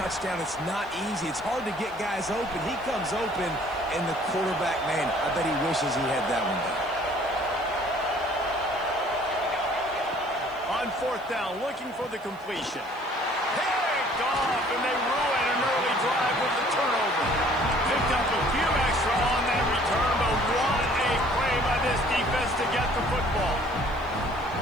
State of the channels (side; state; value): left; noise; hiss, 28 dB below the sound